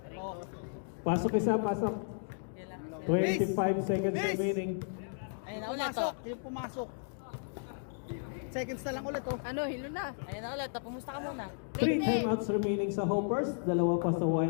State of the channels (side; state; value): right; silent; digital silence